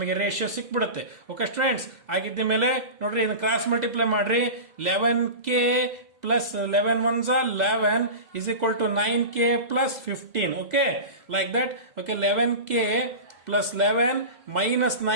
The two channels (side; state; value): left; late; 2.0 ms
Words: ರೇಷಿಯೋ ಸಿಕ್ಬಿಡುತ್ತೆ. ಓಕೆ ಸ್ಟೂಡೆಂಟ್ಸ್, ಆಗಿದ್ದ ಮೇಲೆ ನೋಡ್ರಿ, ಇದನ್ನ ಕ್ರಾಸ್ ಮಲ್ಟಿಪ್ಲೈ ಮಾಡ್ರಿ. 11k plus 11 ones are 11 is equal to 9k plus 15. Okay, like that. Okay, 11k plus 11 minus